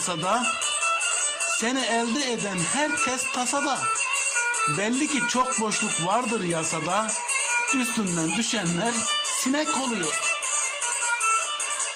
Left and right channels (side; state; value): both; identical; correlation 1.00